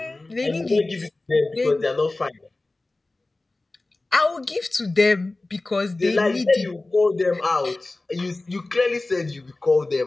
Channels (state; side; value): quieter; right; 3.0 dB